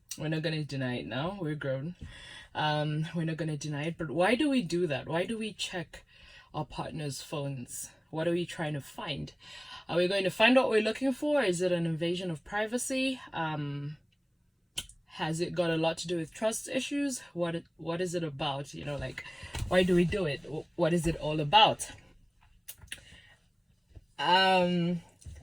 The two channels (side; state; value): both; identical; correlation 1.00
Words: not gonna deny it now. We're grown. We're not gonna deny it. But why do we do that? Why do we check our partner's phones? What are we trying to find? Are we going to find what we're looking for? Is it an invasion of privacy? Has it got a lot to do with trust issues? What is it about? Why do we do it? What is it all about? I